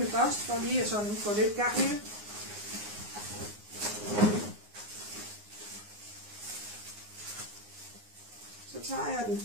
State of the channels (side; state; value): left; late; 9.6 ms